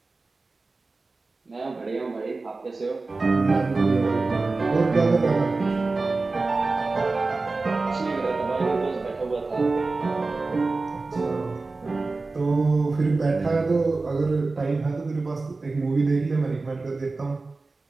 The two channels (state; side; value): quieter; left; 3.6 dB